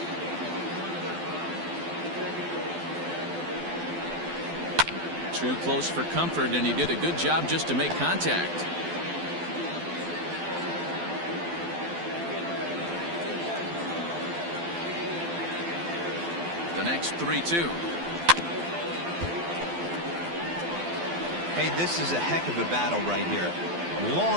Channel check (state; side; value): late; left; 12 ms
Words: Too close for comfort, and he did a good job just to make contact. The next 3-2. Hey, this is a heck of a battle right here.